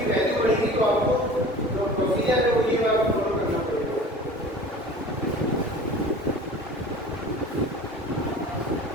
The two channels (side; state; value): both; normal; correlation 0.41